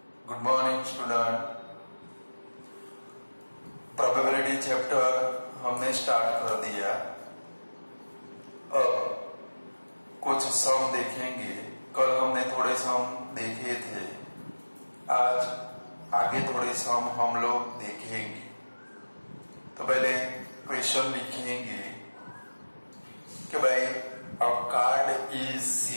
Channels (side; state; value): both; inverted; correlation -1.00